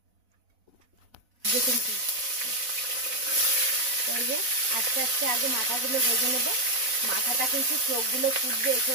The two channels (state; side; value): late; left; 4.0 ms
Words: আস্তে আস্তে আগে মাথাগুলো ভেজে নেবো। মাথাটা কিন্তু চোখগুলো ফুটবে, এসে